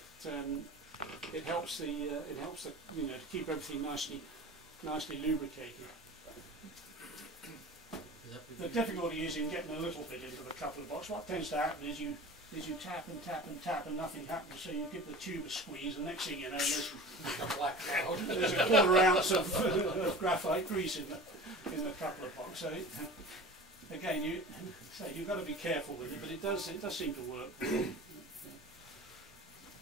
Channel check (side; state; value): both; normal; correlation 0.37